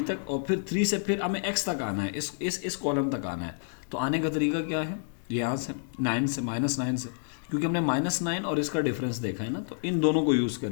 तक, और फिर 3 से फिर हमें x तक आना है, इस कॉलम तक आना है। तो आने का तरीका क्या है, यहाँ से 9 से -9 से, क्योंकि हमने -9 और इसका डिफरेंस देखा है ना, तो इन दोनों को यूज़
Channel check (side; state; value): right; silent; 59 dB below the other